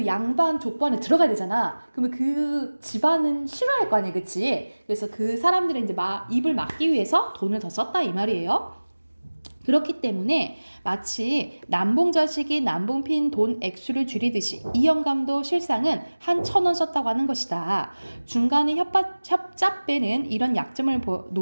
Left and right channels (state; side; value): inverted; both; correlation -1.00